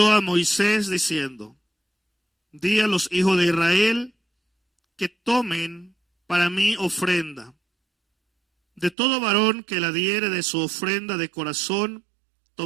a Moisés diciendo, di a los hijos de Israel que tomen para mí ofrenda. De todo varón que la diere de su ofrenda de corazón,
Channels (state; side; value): drops out; left; at 9.0 s